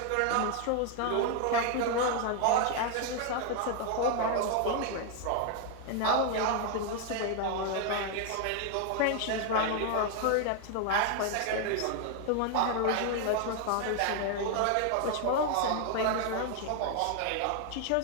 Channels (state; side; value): different; both; correlation 0.00